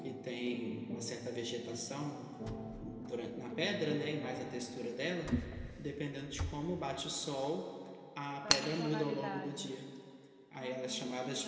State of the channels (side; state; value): both; identical; correlation 1.00